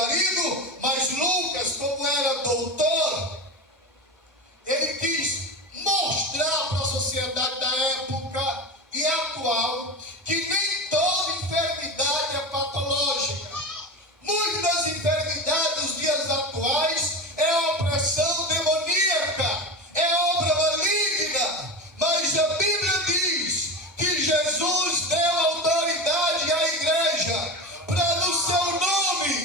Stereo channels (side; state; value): both; normal; correlation 0.25